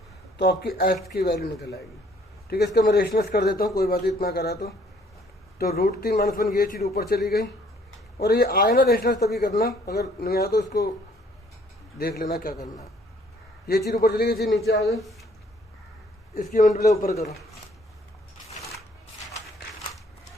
तो आपकी h की वैल्यू निकल आएगी, ठीक है। इसका मैं रेशनलाइज कर देता हूँ, कोई बात इतना करा तो √3 माइनस 1 ये चीज़ ऊपर चली गई। और ये आए ना रेशनलाइज तभी करना, अगर नहीं आया तो इसको देख लेना क्या करना है। ये चीज़ ऊपर चली गई, ये चीज़ नीचे आ गई, इसकी मल्टीप्लाई ऊपर करो।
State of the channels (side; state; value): both; normal; correlation 0.61